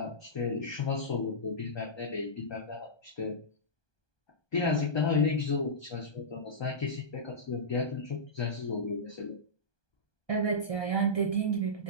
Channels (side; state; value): right; late; 1.2 ms